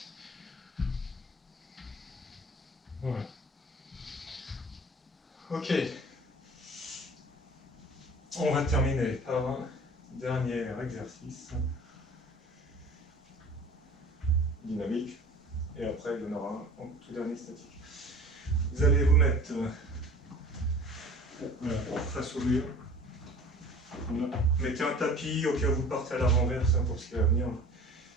Voilà. Ok. On va terminer par un dernier exercice dynamique. Et après, il y en aura un en tout dernier statique. Vous allez vous mettre voilà, face au mur. Voilà. Mettez un tapis au cas où vous partez à la renverse pour ce qui va venir.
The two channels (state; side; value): normal; both; correlation 0.43